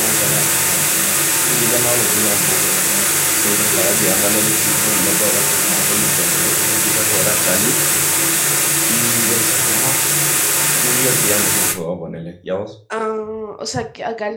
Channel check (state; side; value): identical; both; correlation 1.00